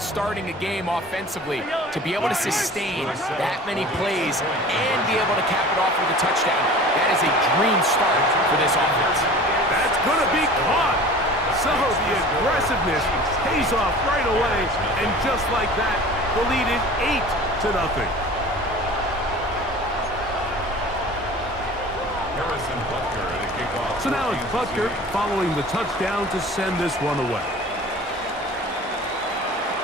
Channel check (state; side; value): normal; both; correlation 0.41